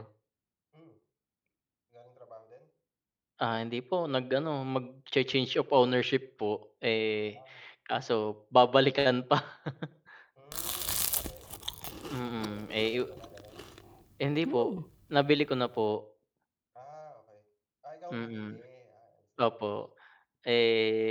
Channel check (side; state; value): both; identical; correlation 1.00